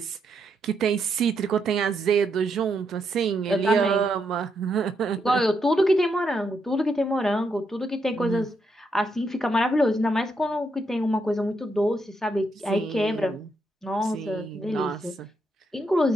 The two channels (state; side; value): normal; both; correlation 0.79